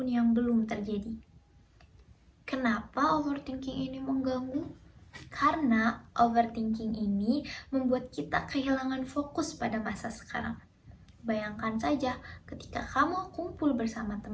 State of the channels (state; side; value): identical; both; correlation 1.00